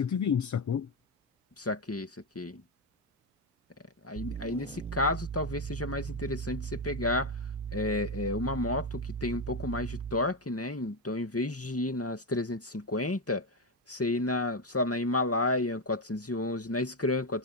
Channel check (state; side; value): normal; both; correlation 0.09